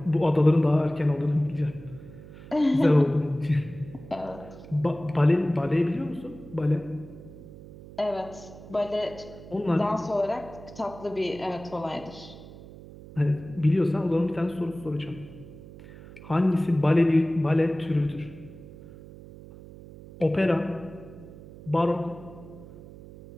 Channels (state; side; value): noise; right; hum, 17 dB below the sound